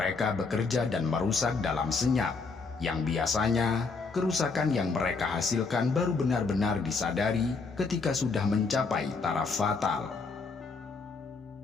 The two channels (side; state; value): right; quieter; 4.4 dB